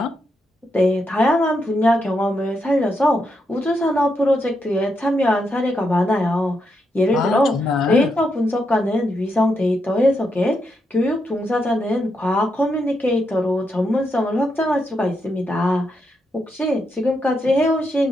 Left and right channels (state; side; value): normal; both; correlation 0.82